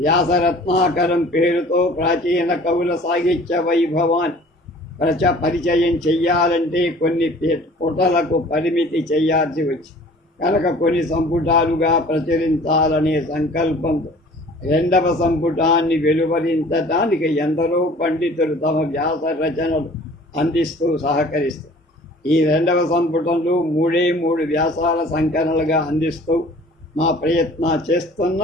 వ్యాసరత్నాకరం పేరుతో ప్రాచీన కవుల సాహిత్య వైభవాన్ని పరిచయం చెయ్యాలంటే కొన్ని పుటలకు పరిమితి చేయాల్సి వచ్చింది కనుక కొన్ని సంపుటాలుగా ప్రచురించాలనే సంకల్పంతో రెండవ సంపుటాన్ని వెలువరించడానికి ఎందరో పండితులు తమ వ్యాస రచనలు అందిస్తూ సహకరిస్తారు. ఈ రెండవ సంపుటంలో మూడు వ్యాసాల సంకలనలుగా అందిస్తూ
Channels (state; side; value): normal; both; correlation 0.49